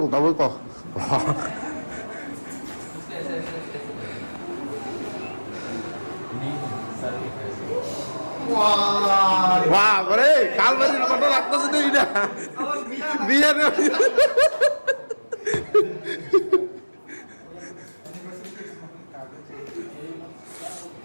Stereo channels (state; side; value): inverted; both; correlation -1.00